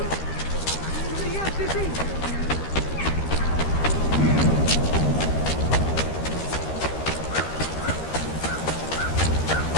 Yes, it is.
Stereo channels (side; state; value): right; late; 13 ms